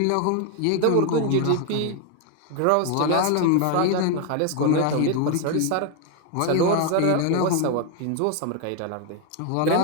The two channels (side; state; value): both; different; correlation 0.01